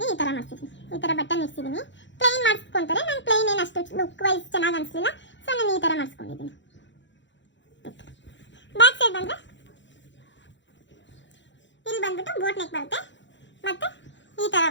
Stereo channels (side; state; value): right; late; 0.54 ms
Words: ಈ ಥರ ಮಾಡ್ತಿದ್ದೀನಿ. ಈ ಥರ ಬಟನ್ ಇಡ್ಸಿದ್ದೀನಿ. ಪ್ಲೈನ್ ಮಾಡಿಸ್ಕೊತಾರೆ. ನಾನು ಪ್ಲೈನ್ ಏನು ಅಷ್ಟು ಲುಕ್ ವೈಸ್ ಚೆನ್ನಾಗಿ ಅನಿಸ್ಲಿಲ್ಲ. ಸೊ ನಾನು ಈ ಥರ ಮಾಡಿಸ್ಕೊಂಡಿದ್ದೀನಿ. ಬ್ಯಾಕ್ ಸೈಡ್ ಬಂದರೆ ಇಲ್ಲಿ ಬಂದ್ಬಿಟ್ಟು ಬೋಟ್ ನೆಕ್ ಬರುತ್ತೆ. ಮತ್ತು ಈ ಥರ